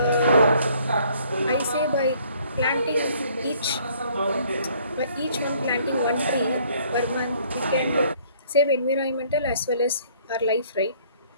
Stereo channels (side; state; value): both; inverted; correlation -0.60